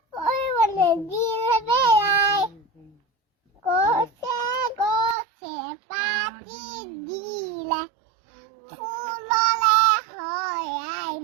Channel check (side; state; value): left; drops out; at 5.2 s